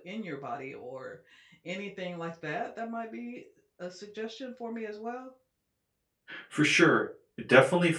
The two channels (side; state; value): both; identical; correlation 1.00